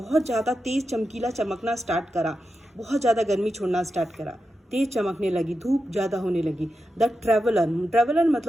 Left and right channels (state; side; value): normal; both; correlation 0.89